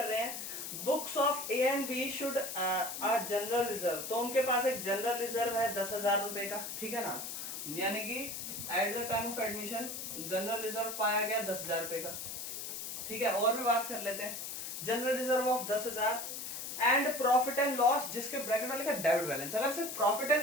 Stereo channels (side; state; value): left; noise; hiss, 6 dB below the sound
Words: रहे हैं, books of A and B should आ जनरल रिजर्व। तो उनके पास एक जनरल रिजर्व है 10,000 रुपए का, ठीक है ना, यानी कि eight the time of admission general reserve पाया गया 10,000 रुपए का, ठीक है। और भी बात कर लेते हैं, general reserve of 10,000 and profit and loss, जिसके ब्रैकेट में लिखा डेबिट बैलेंस। अगर सिर्फ प्रॉफिट